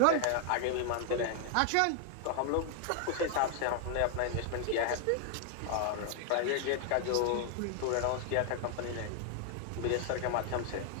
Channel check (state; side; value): different; both; correlation 0.00